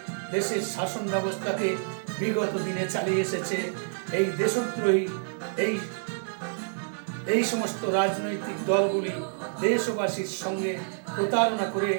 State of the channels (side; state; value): left; silent; 59 dB below the other